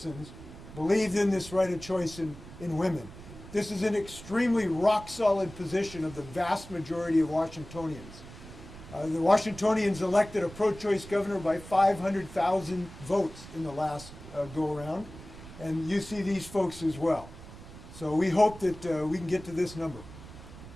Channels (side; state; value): right; noise; rumble, 16 dB below the sound